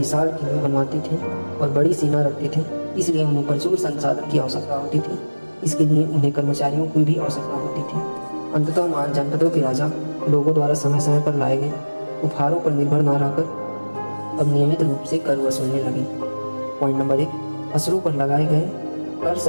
किले बनवाते थे और बड़ी सेना रखते थे, इसलिए उन्हें प्रचुर संसाधन की आवश्यकता होती थी। इसके लिए उन्हें कर्मचारियों की भी आवश्यकता होती थी। अंततः महाजनपदों के राजा लोगों द्वारा समय समय पर लाए गए उपहारों पर निर्भर न रहकर अब नियमित रूप से कर वसूलने लगे। पॉइंट नंबर 1, फसलों पर लगाए गए कर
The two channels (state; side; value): inverted; both; correlation -1.00